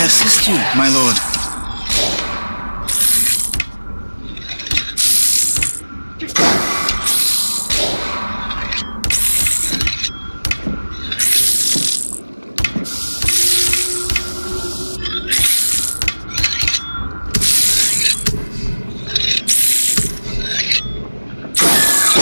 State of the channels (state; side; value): inverted; both; correlation -1.00